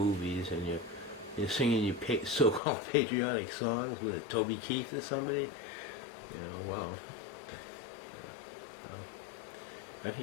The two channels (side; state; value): right; drops out; at 2.6 s